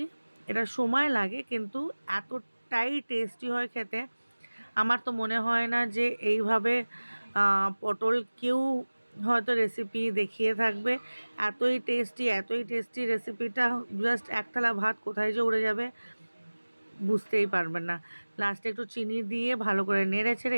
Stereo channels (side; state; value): both; inverted; correlation -1.00